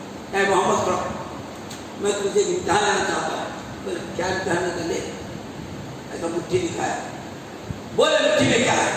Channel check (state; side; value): identical; both; correlation 1.00